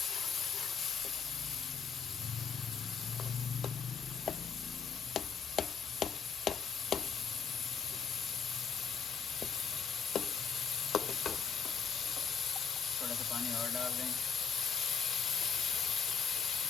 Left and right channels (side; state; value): right; quieter; 6.2 dB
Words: थोड़ा सा पानी और डाल दें।